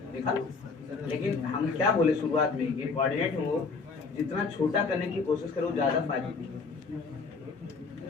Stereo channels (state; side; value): quieter; right; 4.6 dB